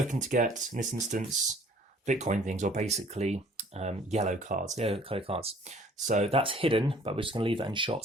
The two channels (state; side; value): normal; both; correlation 0.55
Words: to get, in this instance, Bitcoin things, or basically yellow cards, yellow colour cards. So that's hidden, but we're just going to leave that in shot